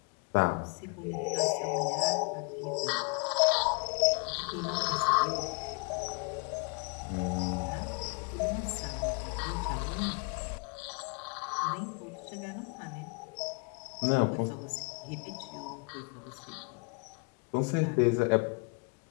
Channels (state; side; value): quieter; right; 33.2 dB